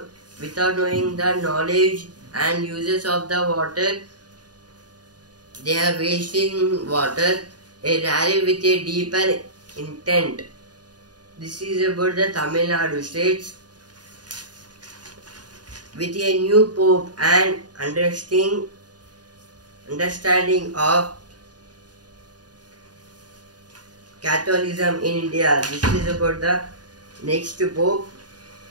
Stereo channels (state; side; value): late; left; 0.69 ms